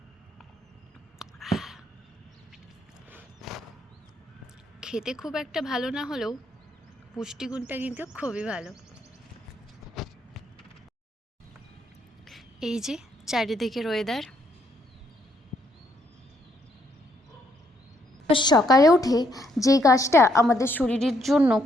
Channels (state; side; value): normal; both; correlation 0.73